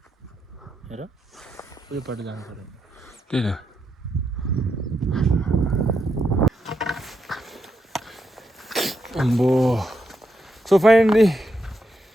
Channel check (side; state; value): both; normal; correlation 0.82